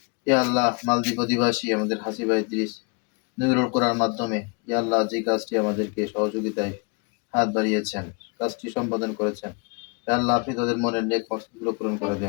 ইয়া আল্লাহ মালদ্বীপ অধিবাসী আমাদের হাসিবা ইদ্রিস নুরুল কোরআন মাধ্যমে ইয়া আল্লাহ যে কাজটি আমাদেরকে সহযোগিতায় হাত বাড়িয়েছেন কাজটি সম্পাদন করেছেন ইয়া আল্লাহ আপনি তাদের মনের নেক মকসদগুলো পূরণ করে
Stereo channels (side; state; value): right; quieter; 32.5 dB